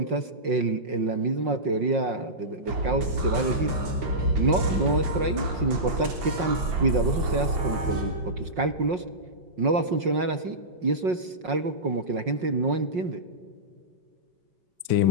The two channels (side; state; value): left; late; 5.5 ms